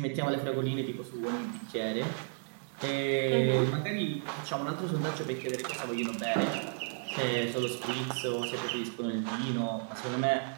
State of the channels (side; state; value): left; silent; 56 dB below the other